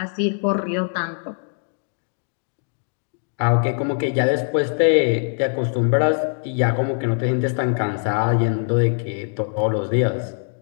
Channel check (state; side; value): silent; right; digital silence